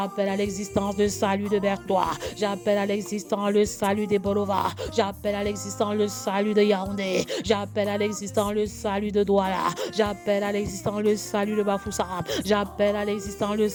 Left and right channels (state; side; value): identical; both; correlation 1.00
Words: à l'existence le salut de Bertois. J'appelle à l'existence le salut des Bolova. J'appelle à l'existence le salut de Yaoundé. J'appelle à l'existence le salut de Douala. J'appelle à l'existence le salut de Bafoussam. J'appelle à l'existence le